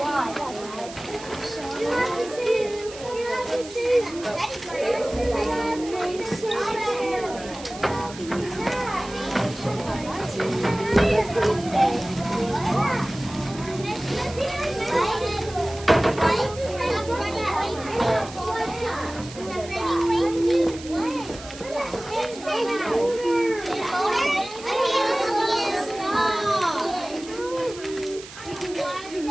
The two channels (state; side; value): noise; right; hiss, 16 dB below the sound